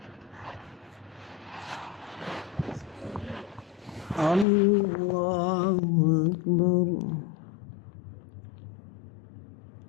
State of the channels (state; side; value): drops out; right; at 4.5 s